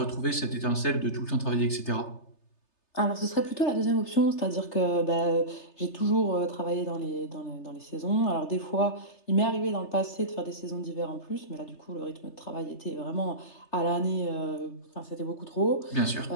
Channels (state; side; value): late; right; 3.3 ms